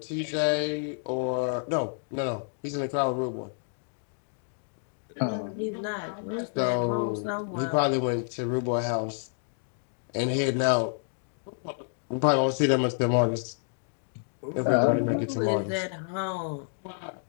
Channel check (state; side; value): silent; right; 58 dB below the other